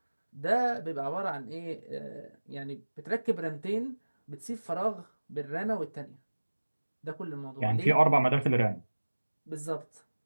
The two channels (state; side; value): inverted; both; correlation -1.00